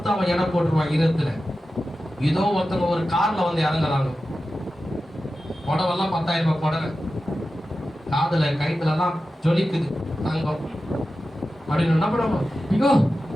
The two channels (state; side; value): normal; both; correlation 0.93